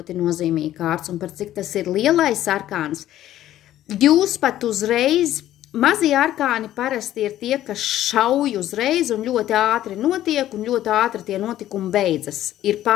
nozīmīga kārts, un par cik tas ir lielais arkāns. Jūs pat uzreiz, mazie arkāni parasti ir tie, kas šauj uzreiz un ļoti ātri notiek, un ļoti ātri tie notikumi beidzas. Ir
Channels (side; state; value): right; quieter; 13.1 dB